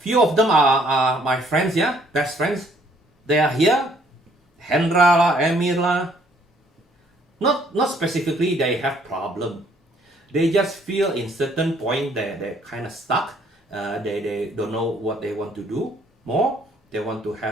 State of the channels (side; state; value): both; normal; correlation 0.63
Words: of them are my friends, yeah, best friends. They are here. Hendra lah, Emir lah. Not specifically they have problem. They just feel in certain point that they're kind of stuck. They don't know what they want to do more. They want to